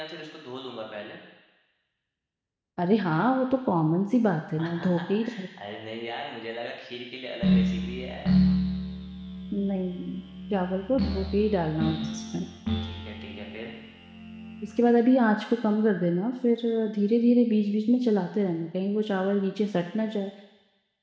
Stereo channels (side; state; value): both; identical; correlation 1.00